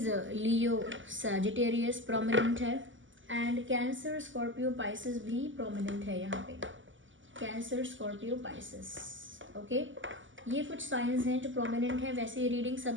लियो, सैजिटेरियस प्रोमिनेंट है। एंड कैंसर, स्कॉर्पियो, पाइसेस भी प्रोमिनेंट है यहाँ पे। Cancer, Scorpio, Pisces, okay. ये कुछ साइंस हैं जो प्रोमिनेंट हैं। वैसे ये रीडिंग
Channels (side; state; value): left; late; 0.55 ms